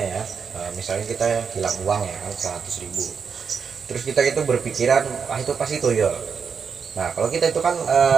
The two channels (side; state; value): left; quieter; 6.2 dB